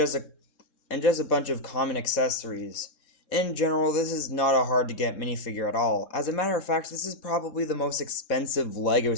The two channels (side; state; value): right; late; 3.7 ms